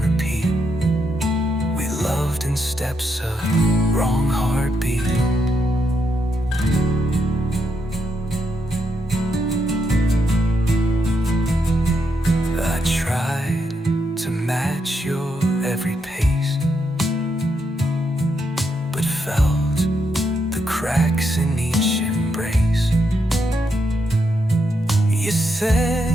repeat. We loved in steps of wrong heartbeat. I tried to match your every pace, but felt the cracks in each embrace. You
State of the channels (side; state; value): both; normal; correlation 0.80